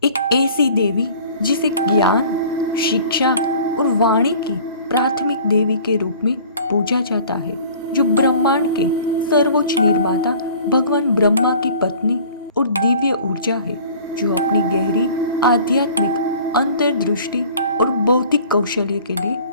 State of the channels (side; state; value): both; inverted; correlation -0.48